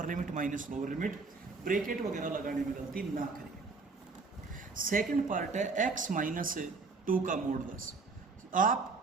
limit minus lower limit, bracket वगैरह लगाने में गलती ना करें। सेकंड पार्ट है x -2 का मॉडुलस।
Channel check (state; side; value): quieter; left; 4.2 dB